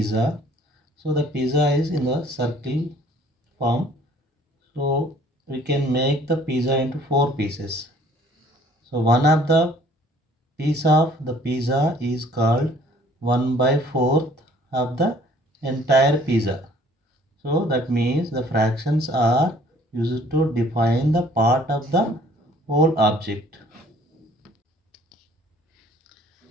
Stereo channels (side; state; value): both; normal; correlation 0.56